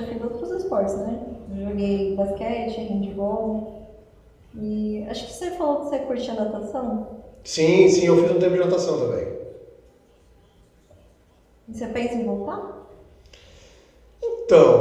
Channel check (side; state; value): both; identical; correlation 1.00